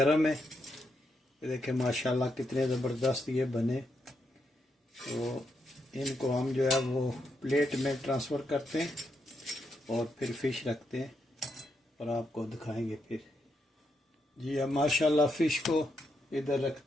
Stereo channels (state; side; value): normal; both; correlation 0.81